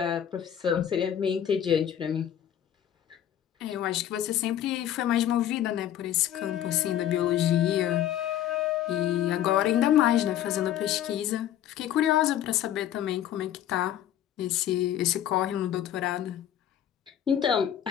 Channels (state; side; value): quieter; right; 10.9 dB